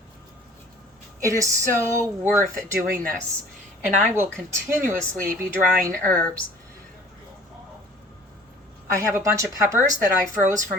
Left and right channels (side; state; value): both; normal; correlation 0.50